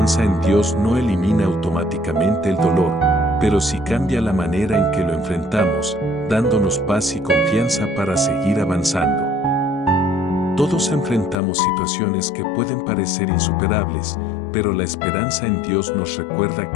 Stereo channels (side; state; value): right; drops out; at 11.4 s